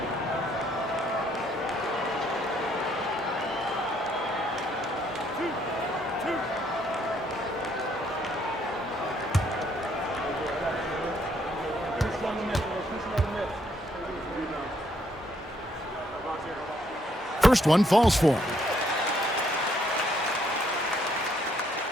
First one falls for him.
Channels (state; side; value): normal; both; correlation 0.69